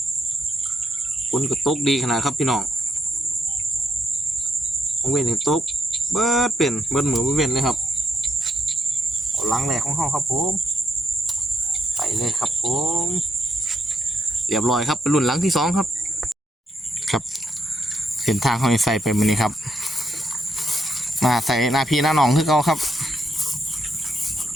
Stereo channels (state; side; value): normal; both; correlation 0.78